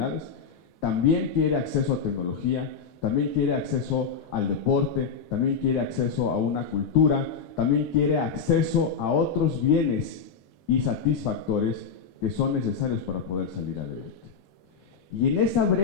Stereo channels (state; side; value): quieter; right; 5.9 dB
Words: también quiere acceso a tecnología, también quiere acceso al deporte, también quiere acceso a una cultura, también quiere acceso a otros bienes y satisfactores que son necesarios para poder salir adelante. Y en esa